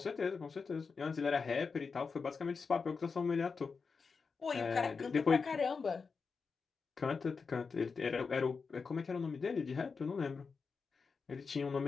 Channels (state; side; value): quieter; right; 5.0 dB